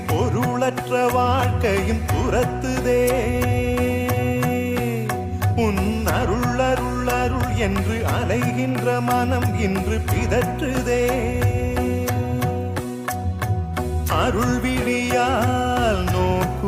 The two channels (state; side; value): identical; both; correlation 1.00